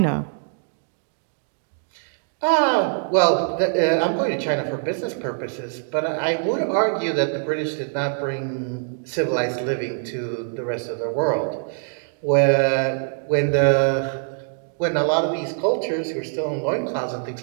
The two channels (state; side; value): silent; left; digital silence